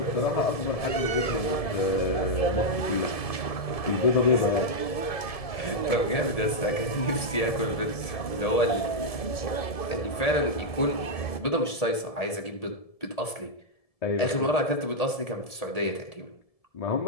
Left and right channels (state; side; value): late; right; 1.7 ms